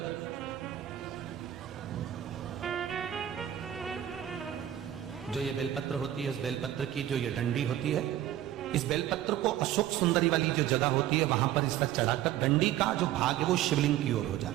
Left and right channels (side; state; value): left; quieter; 12.4 dB